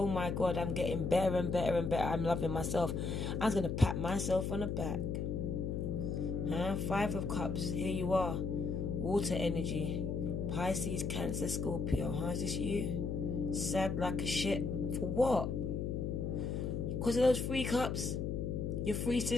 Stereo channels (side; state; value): left; noise; hum, 1 dB below the sound